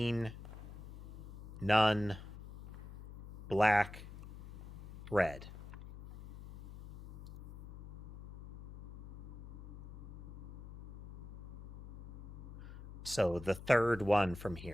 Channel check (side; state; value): left; noise; hum, 11 dB below the sound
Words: none, black, red. So the third one from